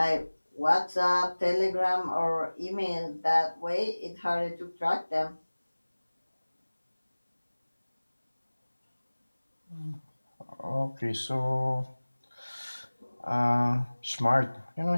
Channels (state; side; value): inverted; both; correlation -1.00